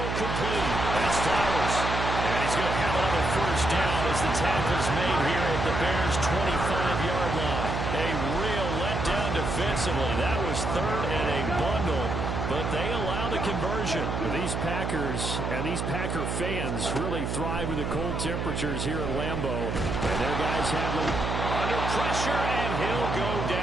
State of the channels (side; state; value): right; noise; hum, 2 dB below the sound